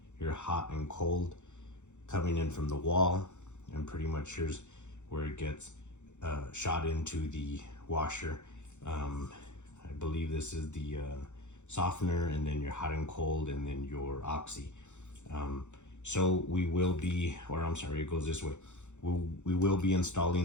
hot and cold coming in from the wall, and pretty much here's where it gets shot into the washer. I believe this is the softener, and then your hot and cold, and then your oxy. So we will be, or I'm sorry, it goes this way. We will be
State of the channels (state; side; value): late; right; 0.84 ms